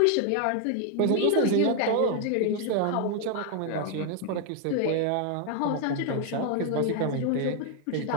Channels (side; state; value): both; different; correlation 0.00